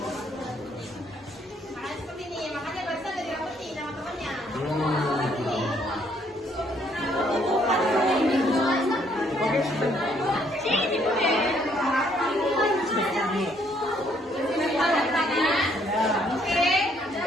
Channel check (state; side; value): normal; both; correlation 0.67